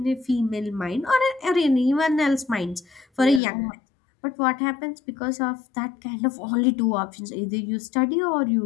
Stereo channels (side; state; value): right; drops out; at 3.4 s